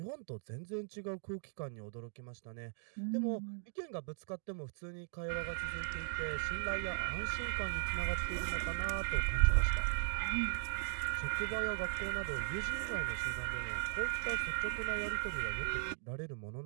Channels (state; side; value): silent; left; 52 dB below the other